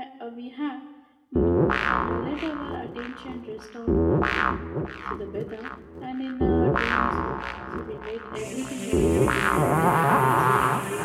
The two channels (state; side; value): identical; both; correlation 1.00